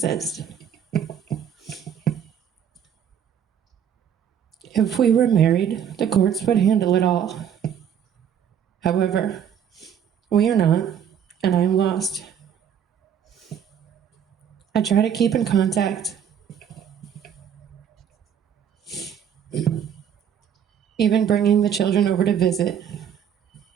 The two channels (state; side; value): quieter; left; 8.6 dB